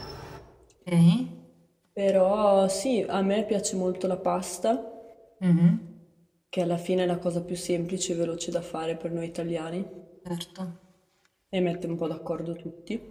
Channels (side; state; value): both; identical; correlation 1.00